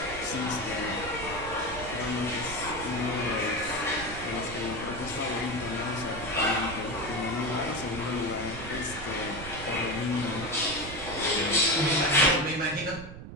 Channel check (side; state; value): right; noise; rumble, 11 dB below the sound